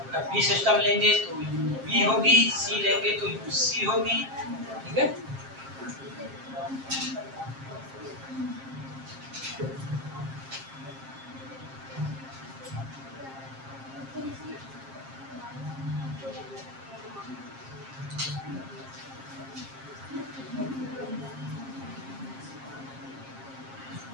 अब बी सिस्टम लेंगे तो बी होगी, सी लेंगे तो सी होगी। ठीक है,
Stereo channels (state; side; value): late; left; 7.5 ms